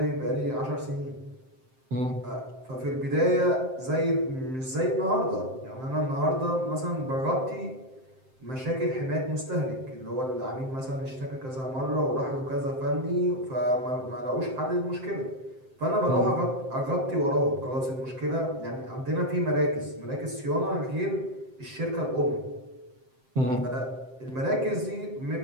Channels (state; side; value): late; left; 7.7 ms